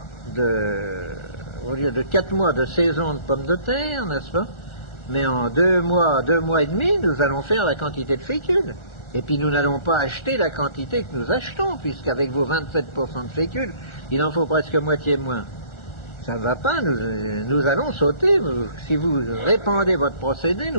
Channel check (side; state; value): right; late; 1.4 ms